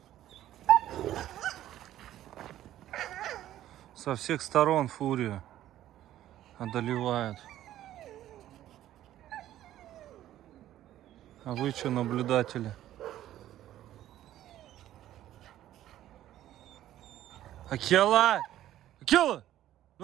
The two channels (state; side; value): quieter; left; 12.9 dB